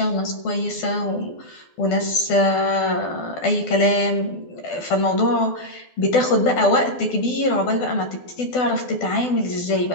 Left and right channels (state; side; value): late; right; 12 ms